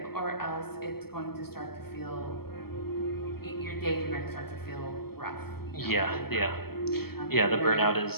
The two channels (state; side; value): late; right; 0.95 ms